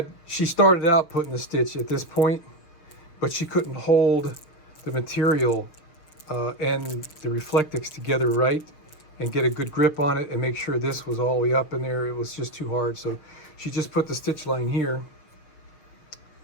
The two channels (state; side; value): late; right; 6.7 ms